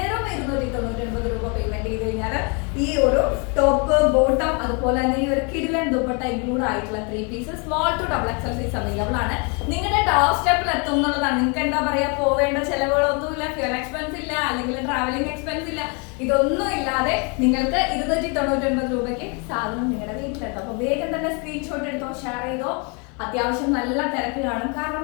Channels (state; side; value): quieter; right; 34.0 dB